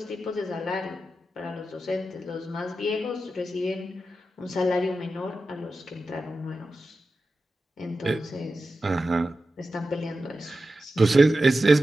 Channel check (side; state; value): both; normal; correlation 0.92